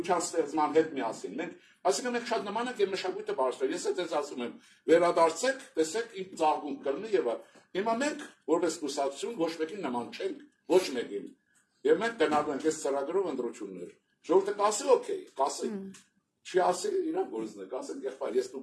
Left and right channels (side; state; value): both; identical; correlation 1.00